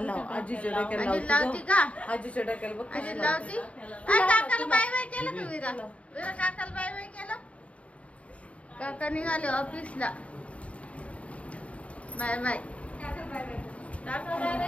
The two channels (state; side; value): late; right; 0.065 ms